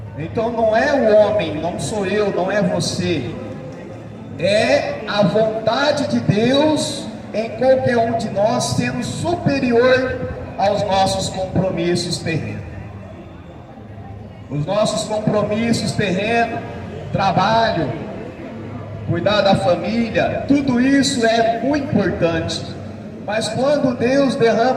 Então não é o homem, não sou eu, não é você, é a vontade de Deus em qualquer um de nós, sendo superior aos nossos compromissos terrenos. Os nossos compromissos terrenos, trabalho, cuidar da família, tudo isso é muito importante, Mas quando Deus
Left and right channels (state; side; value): identical; both; correlation 1.00